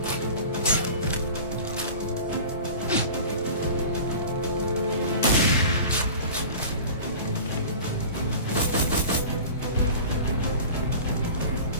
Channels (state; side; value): inverted; both; correlation -0.38